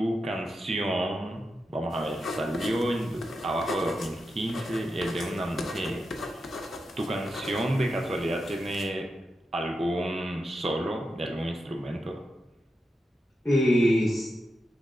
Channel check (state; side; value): normal; both; correlation 0.88